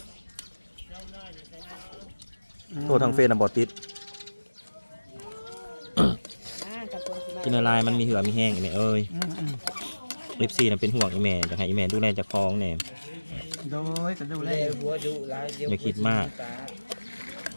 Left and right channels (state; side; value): inverted; both; correlation -1.00